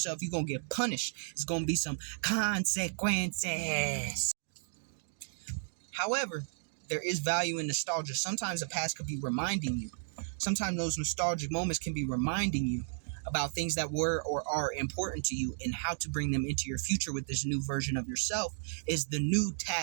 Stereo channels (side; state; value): left; silent; digital silence